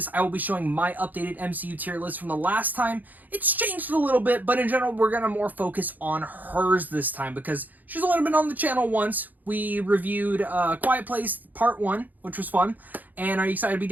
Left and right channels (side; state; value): left; late; 0.083 ms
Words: I will be showing my updated MCU tier list from the last time. It's changed a little bit, but in general, we're going to more focus on hers this time because she's only been on the channel once. We reviewed Quiet Place Part 1, which was fun. And are you excited to be